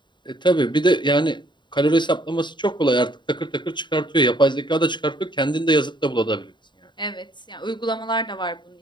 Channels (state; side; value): late; right; 0.22 ms